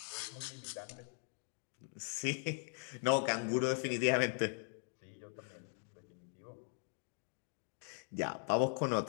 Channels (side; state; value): right; silent; 51 dB below the other